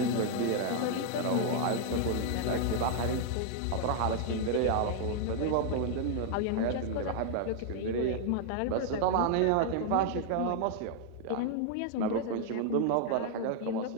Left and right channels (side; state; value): both; different; correlation 0.00